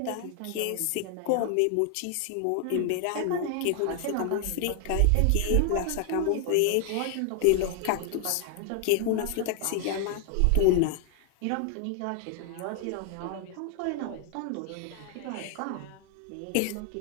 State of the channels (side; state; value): both; different; correlation 0.00